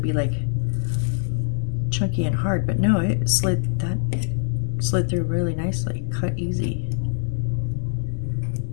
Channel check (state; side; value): silent; right; digital silence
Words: be like chunky and hard, but no, it slid through really nicely. Cut easy.